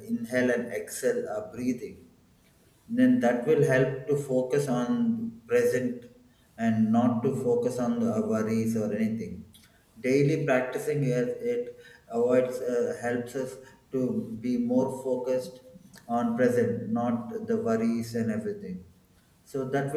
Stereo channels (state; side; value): identical; both; correlation 1.00